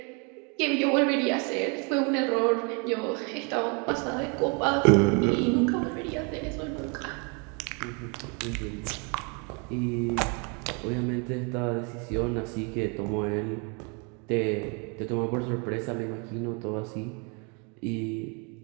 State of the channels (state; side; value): quieter; left; 33.9 dB